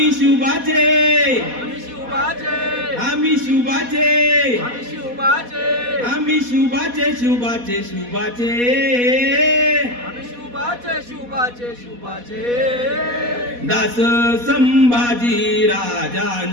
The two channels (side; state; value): left; late; 4.1 ms